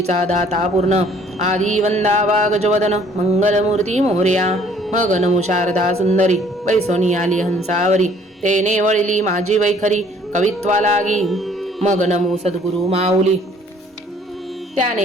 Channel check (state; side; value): normal; both; correlation 0.58